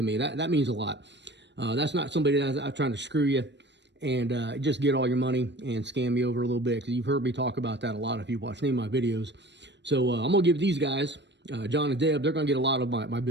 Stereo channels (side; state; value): left; late; 0.51 ms